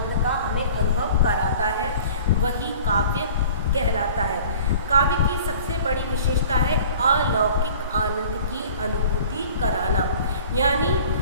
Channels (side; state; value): both; inverted; correlation -0.46